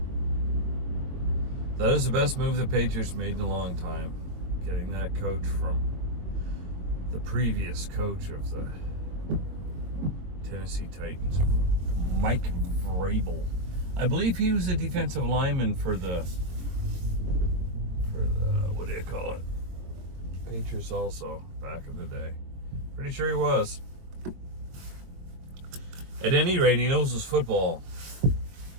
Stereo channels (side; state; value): left; late; 21 ms